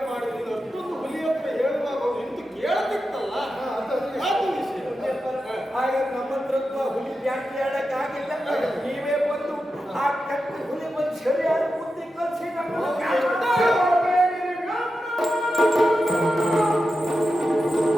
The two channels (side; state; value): both; normal; correlation 0.90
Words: ಮಾಡಿದ್ದೀನಿ, ಅಷ್ಟೊಂದು ಹುಲಿ ಹತ್ರ ಹೇಳುವಾಗ ನಿಂತು ಕೇಳತಿತ್ತಲ್ಲ, ಅದು ವಿಷಯ. ಹಾಗೆ ನಮ್ಮಂತ್ರತ್ವ ಹುಲಿ ಜಾಸ್ತಿ ಆಡಕ್ಕಾಗಿಲ್ಲ. ನೀವೇ ಬಂದು ಆ ಕಟ್ಟು ಹುಲಿ ಬಂದು ಸರಿಯಾದ ಬುದ್ಧಿ ಕಲಿಸಿ ನಮ್ಮನ್ನು